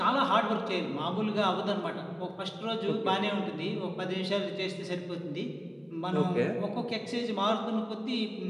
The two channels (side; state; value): both; identical; correlation 1.00